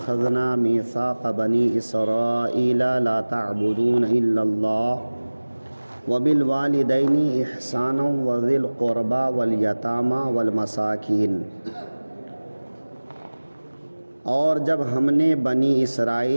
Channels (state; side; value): inverted; both; correlation -1.00